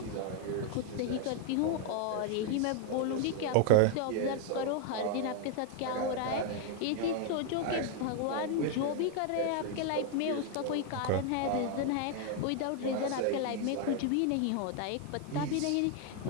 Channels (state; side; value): different; both; correlation 0.00